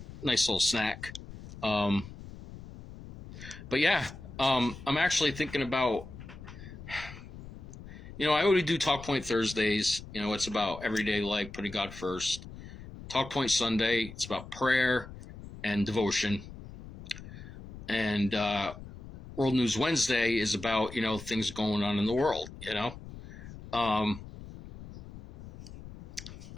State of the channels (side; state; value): left; noise; rumble, 14 dB below the sound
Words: nice little snack. Um, but yeah, I'm actually thinking about, I already do Talk Point Thursdays. It's about everyday life, putting God first. Talk Point Sunday, it's about prayer and devotion. And World News Wednesday is about, things going on in the world, Um,